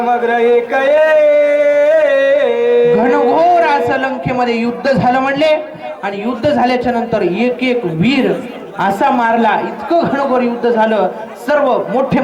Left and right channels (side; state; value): both; identical; correlation 1.00